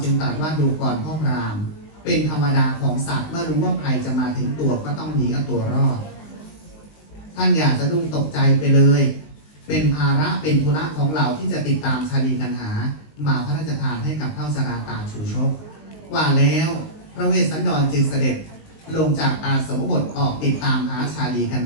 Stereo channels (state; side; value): late; right; 19 ms